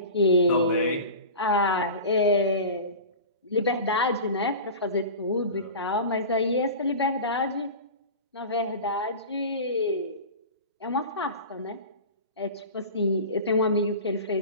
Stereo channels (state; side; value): inverted; both; correlation -0.33